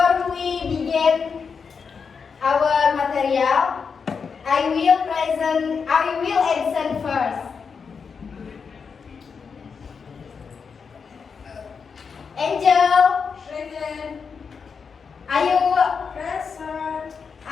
we begin our material, I will answer first. Angel, Present. Ayu, Present.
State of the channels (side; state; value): right; quieter; 5.8 dB